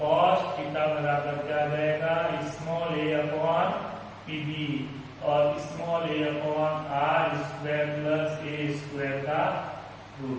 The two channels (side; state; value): both; identical; correlation 1.00